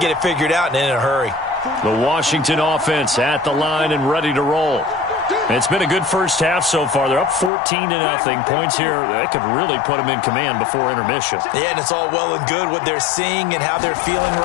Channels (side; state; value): right; drops out; at 7.5 s